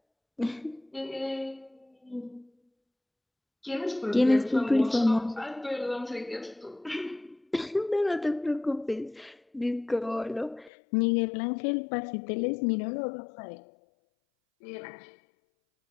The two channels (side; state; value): right; drops out; at 10.7 s